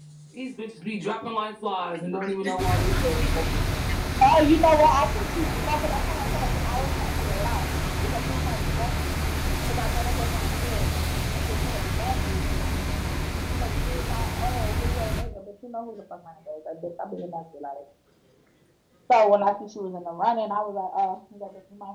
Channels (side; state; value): both; identical; correlation 1.00